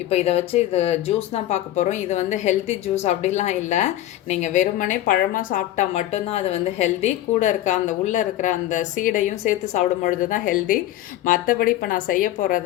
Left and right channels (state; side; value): quieter; right; 13.9 dB